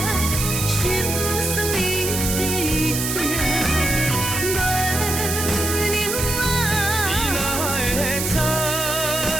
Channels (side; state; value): right; noise; hiss, 2 dB below the sound